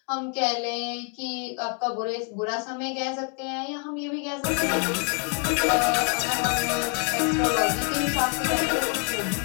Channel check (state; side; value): quieter; right; 39.4 dB